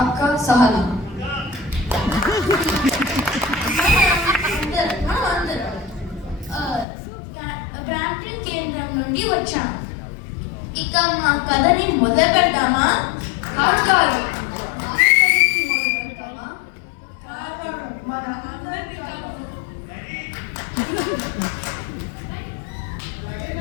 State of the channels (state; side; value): drops out; right; at 6.9 s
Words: అక్క సహన. గ్రాండ్ కేంద్రం నుండి వచ్చాం. ఇక మా కథని మొదలు పెడతామా? కాదు,